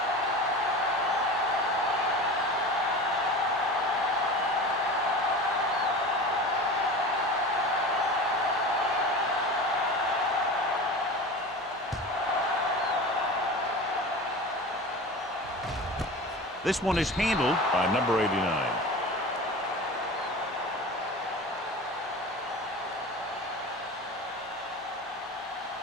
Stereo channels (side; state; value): both; normal; correlation 0.32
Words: This one is handled by number 89.